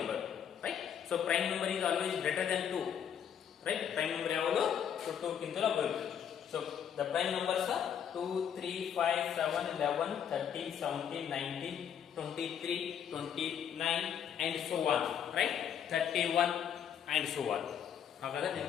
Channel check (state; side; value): quieter; right; 8.6 dB